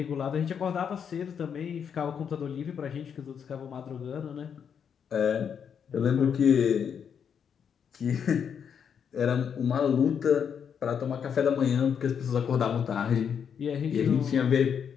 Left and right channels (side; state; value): right; quieter; 7.5 dB